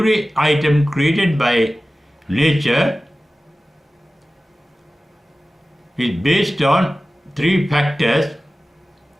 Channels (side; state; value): both; normal; correlation 0.96